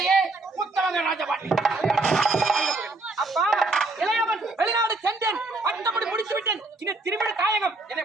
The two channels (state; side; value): quieter; left; 3.2 dB